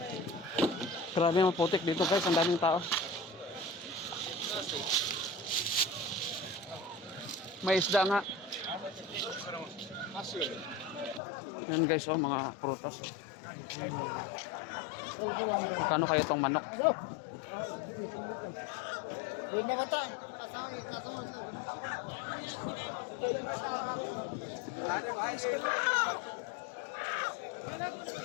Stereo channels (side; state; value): right; drops out; at 11.2 s